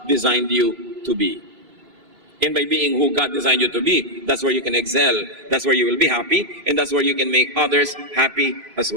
designed you to be. And by being who God designed you to be, that's where you can excel, that's where you will be happy, and that's where you can make others happy as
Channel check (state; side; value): late; left; 3.0 ms